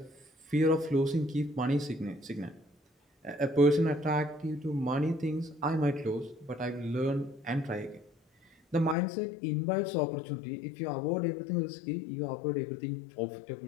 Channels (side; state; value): right; drops out; at 9.0 s